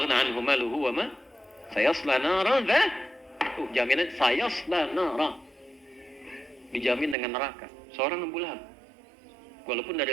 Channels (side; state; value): left; drops out; at 7.2 s